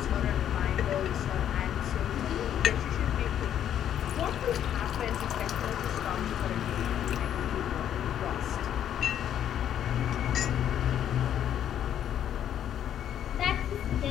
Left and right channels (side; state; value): right; quieter; 10.1 dB